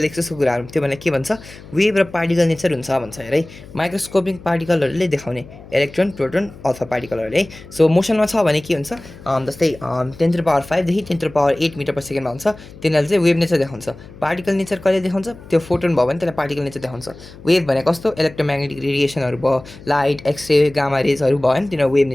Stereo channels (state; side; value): noise; left; hum, 18 dB below the sound